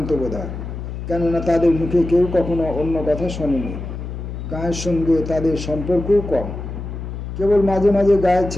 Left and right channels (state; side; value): noise; left; hum, 7 dB below the sound